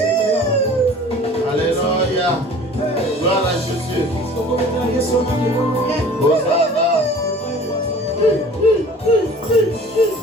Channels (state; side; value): normal; both; correlation 0.45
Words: Alléluia. Gloire à Jésus. Hosanna.